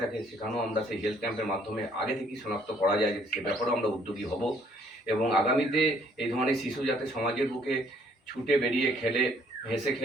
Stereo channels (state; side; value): normal; both; correlation 0.63